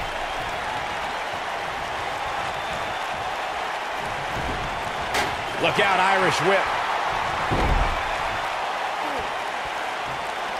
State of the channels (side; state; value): both; identical; correlation 1.00